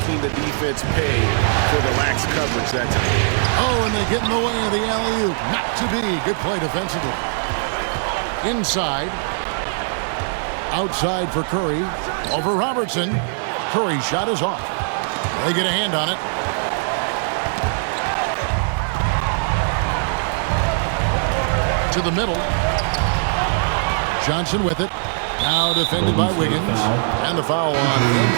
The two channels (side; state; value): left; silent; 56 dB below the other